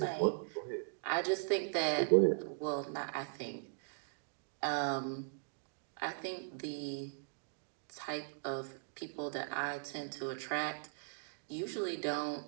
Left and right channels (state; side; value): silent; left; digital silence